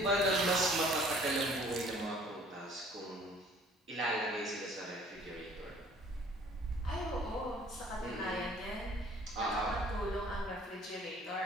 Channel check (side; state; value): both; normal; correlation 0.54